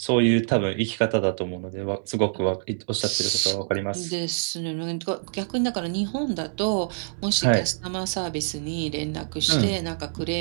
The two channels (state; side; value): silent; left; digital silence